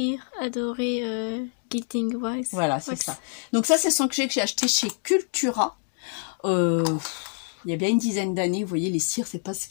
adoré, Gilding Wax. Voilà, c'est ça. Donc ça, c'est son que j'ai acheté chez Cultura. Il y a bien une dizaine d'années, vous voyez, les cires, c'est pas ce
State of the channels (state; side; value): silent; right; 61 dB below the other